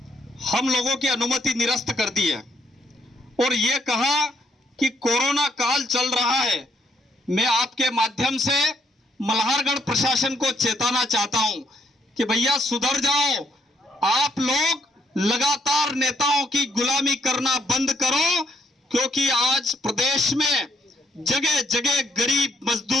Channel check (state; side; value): normal; both; correlation 0.71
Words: हम लोगों की अनुमति निरस्त कर दी है और ये कहा कि कोरोना काल चल रहा है। मैं आपके माध्यम से मल्हारगढ़ प्रशासन को चेताना चाहता हूं कि भैया सुधर जाओ, आप लोग लगातार नेताओं की गुलामी करना बंद करो, क्योंकि आज प्रदेश में जगह जगह गरीब